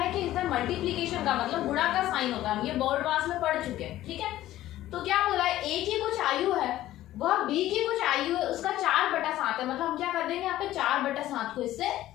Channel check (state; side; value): quieter; right; 14.4 dB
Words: कि इसमें मल्टीप्लीकेशन का मतलब गुणा का साइन होता है। हम ये बोर्ड पास में पढ़ चुके हैं। ठीक है, तो क्या बोला है, ए की कुछ आयु है वह बी की कुछ आयु है उसका 4/7 है। मतलब हम क्या कर देंगे, यहाँ पे 4/7 को इससे